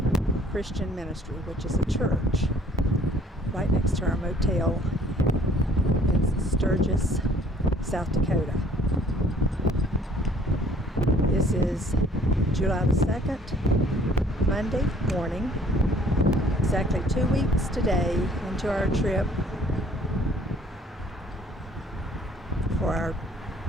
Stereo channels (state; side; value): normal; both; correlation 0.58